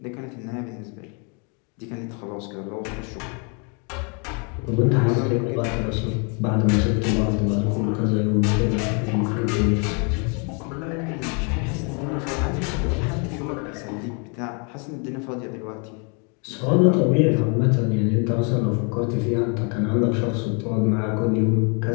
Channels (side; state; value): right; quieter; 36.1 dB